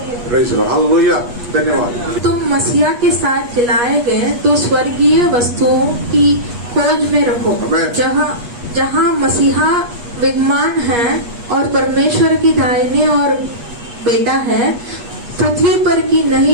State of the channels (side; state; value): left; late; 8.3 ms